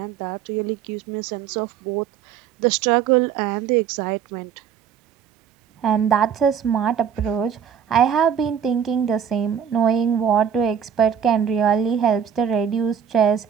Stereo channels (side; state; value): left; quieter; 8.1 dB